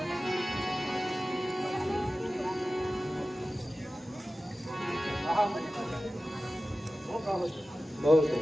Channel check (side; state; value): both; normal; correlation 0.95